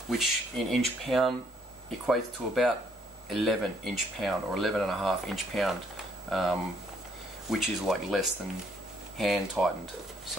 which in inch pound equates to about 11 inch pound or 11.5 inch pound, which is like less than hand tightened.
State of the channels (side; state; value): both; normal; correlation 0.67